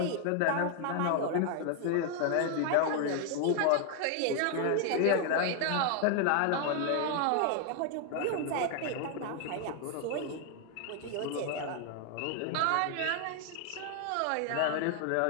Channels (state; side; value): different; both; correlation 0.00